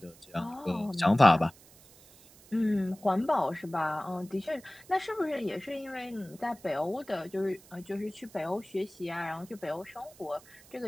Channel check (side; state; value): right; noise; hiss, 24 dB below the sound